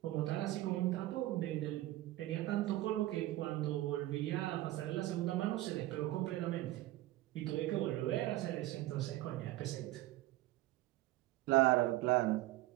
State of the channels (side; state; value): left; quieter; 16.6 dB